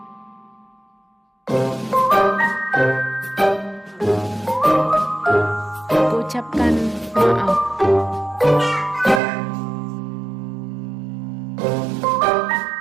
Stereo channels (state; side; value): drops out; left; at 9.2 s